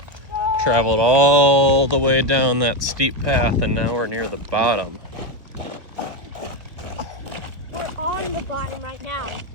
traveled all the way down that steep path and now we're near the bottom. We're on the bottom right now.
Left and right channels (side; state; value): left; late; 1.1 ms